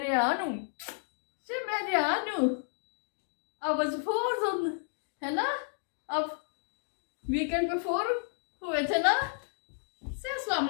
हूँ। से मैं रियान हूँ। अब आज 4 है ना? अब वीकेंड पे 4 हुए थे ना? Say Assalamu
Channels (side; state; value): right; silent; digital silence